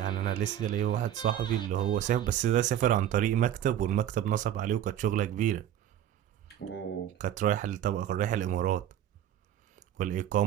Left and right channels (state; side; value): quieter; left; 11.0 dB